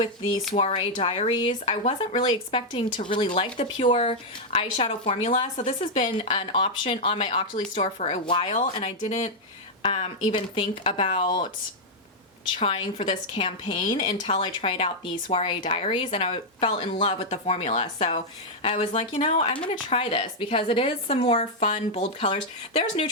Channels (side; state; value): both; normal; correlation -0.02